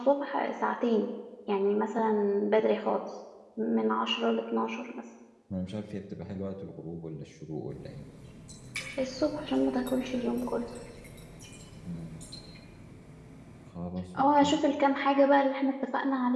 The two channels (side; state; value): both; identical; correlation 1.00